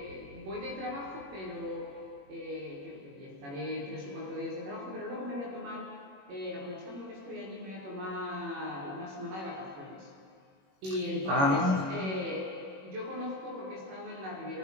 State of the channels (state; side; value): late; left; 21 ms